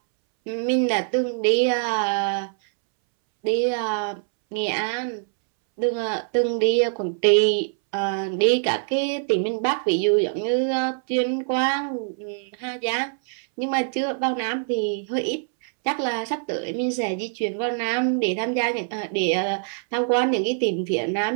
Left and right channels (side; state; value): left; silent; 63 dB below the other